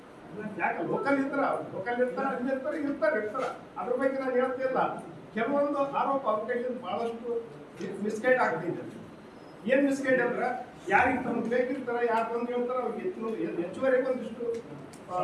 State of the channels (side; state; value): both; identical; correlation 1.00